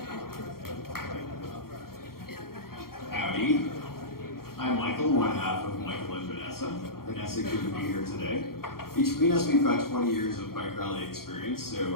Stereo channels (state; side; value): late; right; 0.93 ms